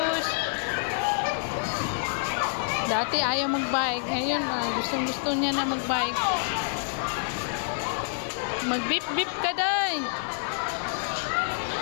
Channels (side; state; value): right; silent; digital silence